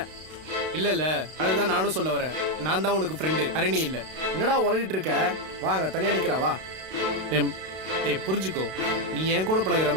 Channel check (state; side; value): late; left; 32 ms